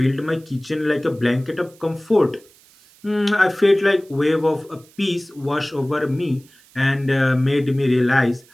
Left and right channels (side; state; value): right; noise; hiss, 28 dB below the sound